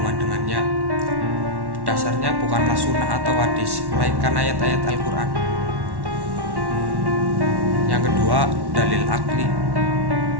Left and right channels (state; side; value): late; left; 1.1 ms